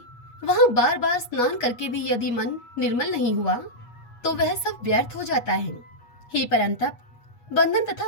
वहाँ बार बार स्नान करके भी यदि मन निर्मल नहीं हुआ तो वह सब व्यर्थ हो जाता है। हे परंतप, बंधन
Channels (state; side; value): late; right; 8.4 ms